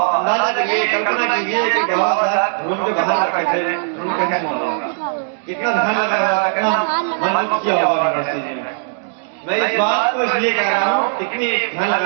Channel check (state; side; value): silent; left; digital silence